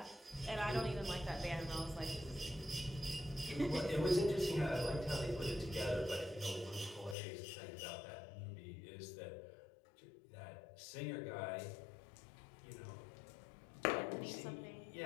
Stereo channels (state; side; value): drops out; right; at 7.2 s